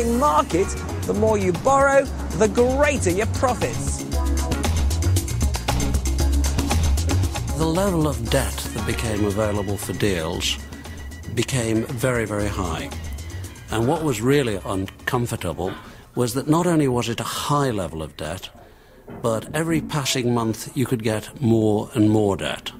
market, the more you borrow, the greater your profits. The level of debt that became available for deals became very, very high. And what was really uncomfortable was that not only was it a high level of debt, but every passing month you could get more and more debt.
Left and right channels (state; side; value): identical; both; correlation 1.00